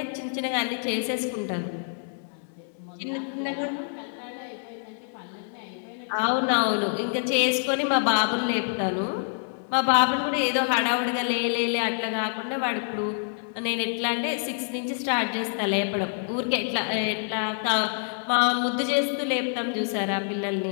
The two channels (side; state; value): right; silent; digital silence